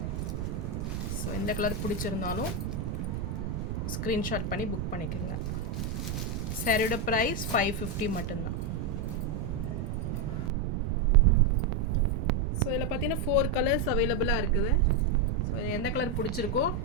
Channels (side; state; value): right; noise; rumble, 3 dB below the sound